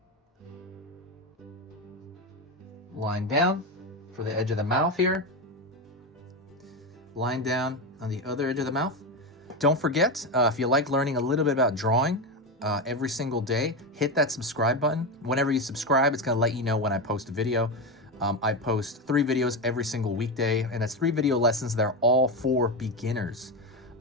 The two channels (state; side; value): normal; both; correlation 0.15